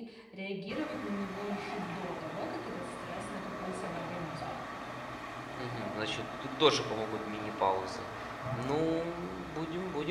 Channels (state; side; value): identical; both; correlation 1.00